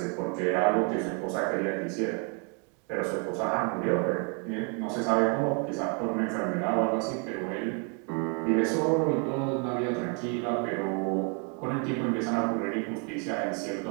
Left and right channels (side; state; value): left; quieter; 38.3 dB